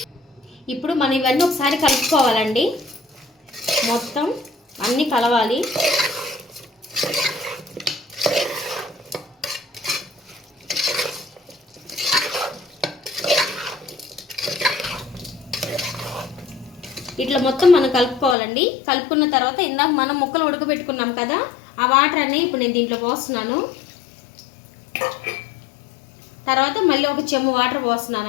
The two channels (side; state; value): right; drops out; at 18.4 s